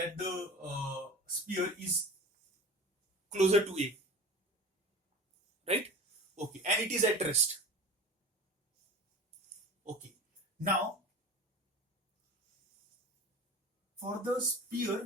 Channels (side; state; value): both; normal; correlation 0.35